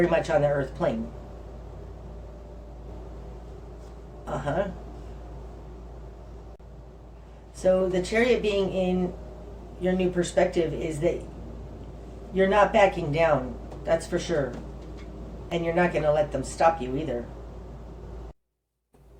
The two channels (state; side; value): identical; both; correlation 1.00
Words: much on the earth plane. So the Chariot being in your new perspective is that you're not backing down. That's for sure. And you're not going to let them stop you either.